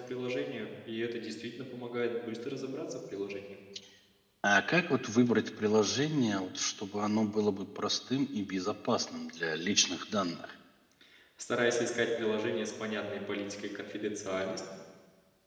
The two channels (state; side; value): identical; both; correlation 1.00